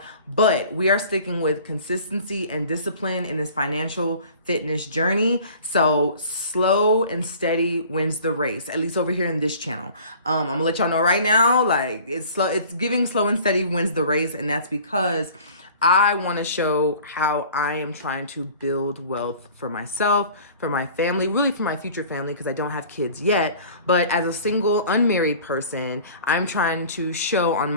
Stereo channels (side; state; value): both; inverted; correlation -0.47